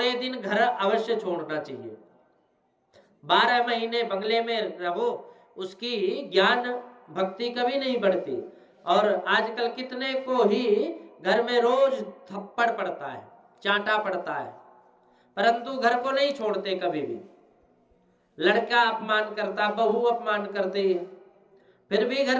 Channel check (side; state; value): both; identical; correlation 1.00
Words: दिन घर अवश्य छोड़ना चाहिए। 12 महीने बंगले में रहो, उसकी ज्ञान भक्ति कभी नहीं बढ़ती। और आजकल कितने को ही घर में रोज थप्पड़ पड़ता है, चांटा पड़ता है, परंतु घर को नहीं छोड़ते कभी भी। लड़का अपमान करता, बहू अपमान करती है, फिर भी